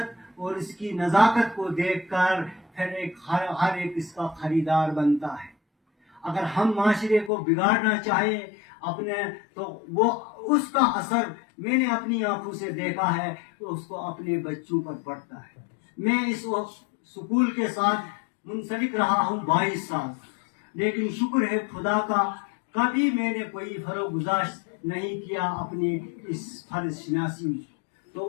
اور اس کی نزاکت کو دیکھ کر پھر ہر ایک اس کا خریدار بنتا ہے. اگر ہم معاشرے کو بگاڑنا چاہیں اپنے تو وہ اس کا اثر میں نے اپنی آنکھوں سے دیکھا ہے تو اس کو اپنے بچوں پر پڑتا ہے. میں اس سکول کے ساتھ منسلک رہا ہوں 22 سال، لیکن شکر ہے خدا کا کبھی میں نے کوئی فروغ گزاشت نہیں کیا اپنی اس فرض شناسی میں.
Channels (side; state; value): right; drops out; at 7.3 s